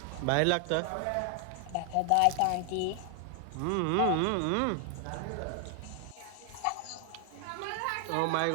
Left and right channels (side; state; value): both; different; correlation 0.00